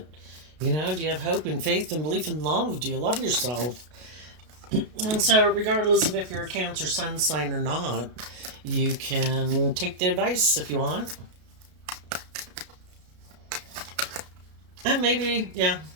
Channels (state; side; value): late; left; 33 ms